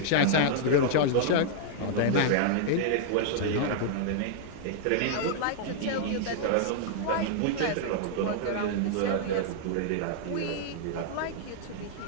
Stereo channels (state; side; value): different; both; correlation -0.01